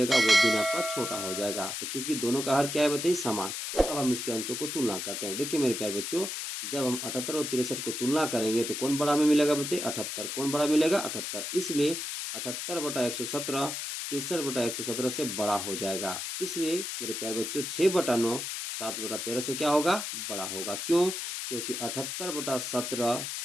वो भिन्न आपका छोटा हो जाएगा। तो चूंकि दोनों का हर क्या है बताइए समान, अब हम इसके अंशों को तुलना करते हैं। देखिए मेरे प्यारे बच्चों, जब हम 78 और 63 को तुलना करेंगे तो कौन बड़ा हमें मिलेगा बताइए 78। कौन बड़ा मिलेगा 78। इसलिए 78/117 63/117 से बड़ा हो जाएगा। इसलिए मेरे प्यारे बच्चों 6/9 7/13 से क्या होगा बड़ा होगा। क्यों, क्योंकि 78/17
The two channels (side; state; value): left; noise; hiss, 4 dB below the sound